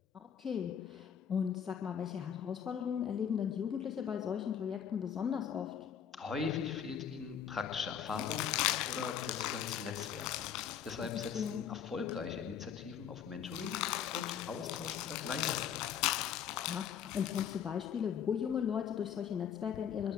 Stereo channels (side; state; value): right; quieter; 8.5 dB